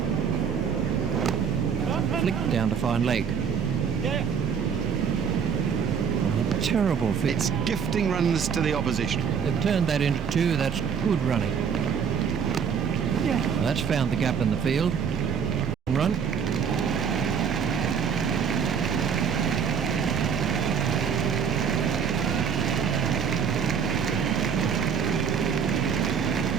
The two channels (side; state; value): left; quieter; 6.9 dB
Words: Flicked down to fine leg. A terrible fit. It's gifting runs to the opposition. They've turned that into two. That's good running. That's found the gap in the field. Run.